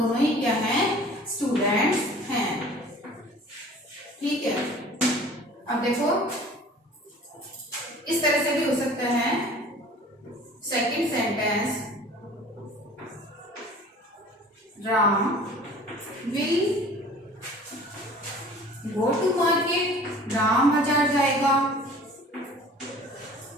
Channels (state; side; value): normal; both; correlation 0.46